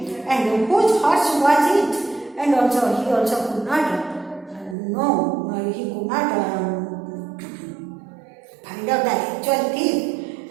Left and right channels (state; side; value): drops out; left; at 4.8 s